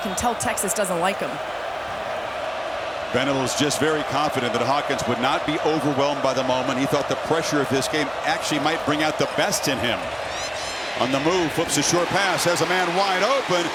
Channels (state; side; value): identical; both; correlation 1.00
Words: tell Texas doesn't like them. Venables just very confident that Hawkins would not be overwhelmed by the moment. He thought the pressure of this game actually might bring out the best in him. On the move, flips a short pass, has a man wide open,